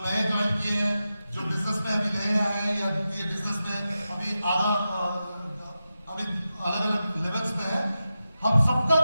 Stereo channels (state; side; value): inverted; both; correlation -0.91